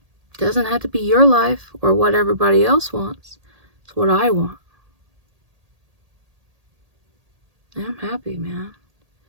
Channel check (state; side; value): late; left; 1.8 ms